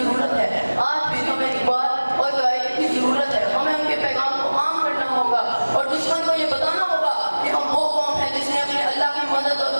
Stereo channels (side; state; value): both; inverted; correlation -1.00